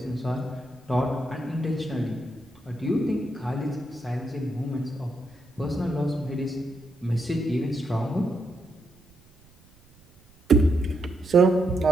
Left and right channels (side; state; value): right; noise; rumble, 28 dB below the sound